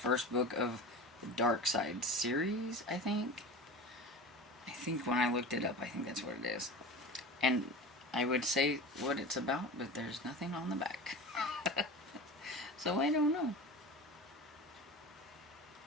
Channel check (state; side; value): normal; both; correlation 0.32